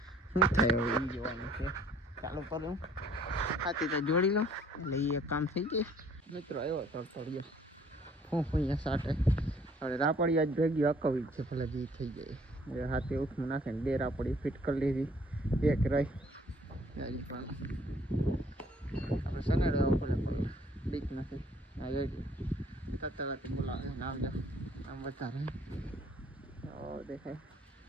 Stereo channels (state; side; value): normal; both; correlation 0.59